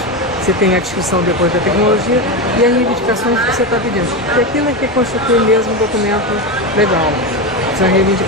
Você tem a descrição depois da tecnologia e as reivindicações que você está pedindo. E aquilo é que constitui mesmo um documento legal, são as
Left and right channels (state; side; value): normal; both; correlation 0.16